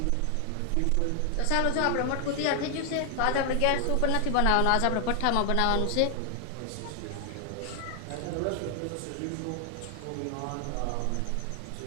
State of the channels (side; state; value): both; different; correlation 0.00